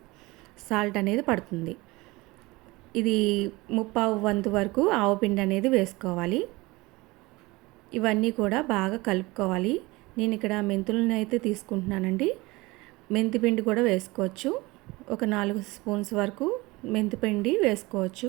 సాల్ట్ అనేది పడుతుంది. ఇది ముప్పావు వంతు వరకు ఆవపిండి అనేది వేసుకోవాలి. ఇవన్నీ కూడా బాగా కలుపుకోవాలి. నేను ఇక్కడ మెంతులను అయితే తీసుకుంటున్నానండి. మెంతిపిండి కూడా వేసుకోవచ్చు. ఒక 4 స్పూన్స్ వరకు మెంతిపిండి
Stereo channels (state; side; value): quieter; left; 22.2 dB